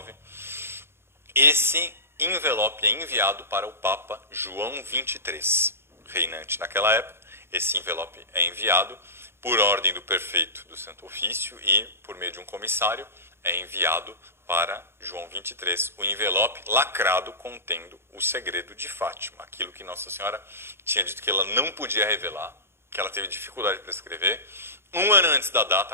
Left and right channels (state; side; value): late; left; 0.12 ms